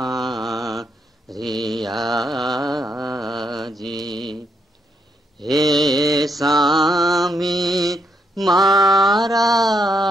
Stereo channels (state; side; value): normal; both; correlation 0.77